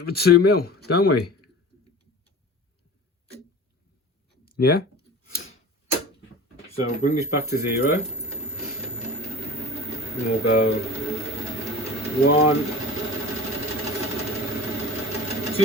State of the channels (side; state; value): both; normal; correlation 0.39